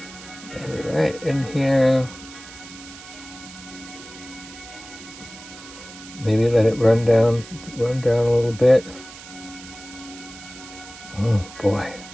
maybe right in here. Maybe let it run down a little bit. Oh boy.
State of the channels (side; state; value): right; noise; hiss, 16 dB below the sound